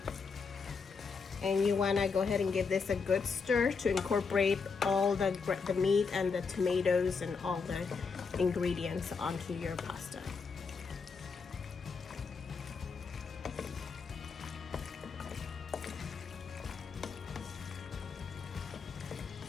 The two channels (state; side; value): quieter; right; 5.1 dB